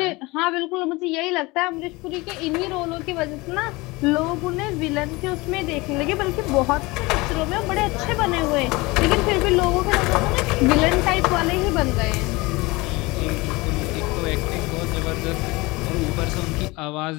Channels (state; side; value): quieter; right; 23.0 dB